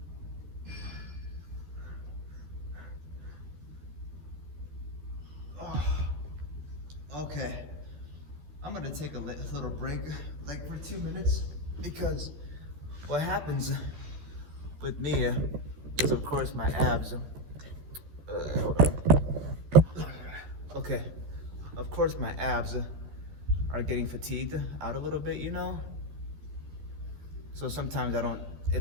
Okay. I'm gonna take a little break, like for 2 minutes, because what happens with me is, of course, my abs. Hold on. Okay. Of course, my abs are getting fatigued out a little bit, you know? So sometimes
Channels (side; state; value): left; late; 13 ms